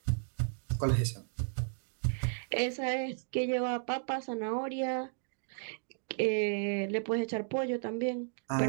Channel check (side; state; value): left; silent; digital silence